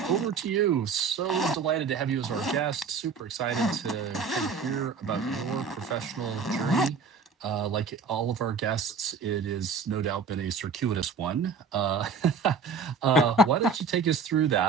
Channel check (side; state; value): left; quieter; 5.2 dB